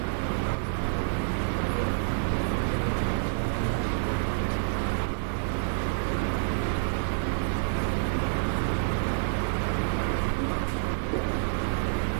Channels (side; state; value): left; silent; digital silence